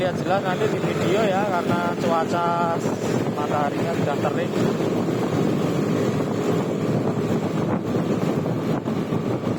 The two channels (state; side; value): identical; both; correlation 1.00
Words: jelas nanti di video ya, karena cuaca mataharinya sudah terik.